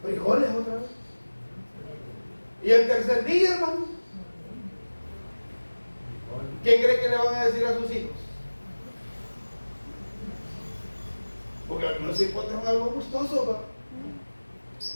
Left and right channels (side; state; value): both; inverted; correlation -1.00